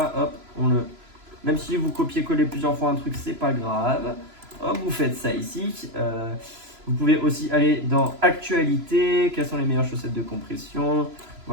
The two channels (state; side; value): late; left; 3.0 ms